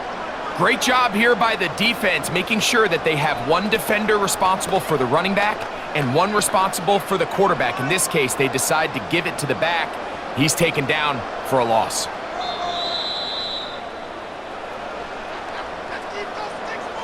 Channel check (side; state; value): both; identical; correlation 1.00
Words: Great job here by the defense, making sure that they have one defender responsible for the running back and one responsible for the quarterback. In this case, they decide to give it to the back. He's taken down for a loss.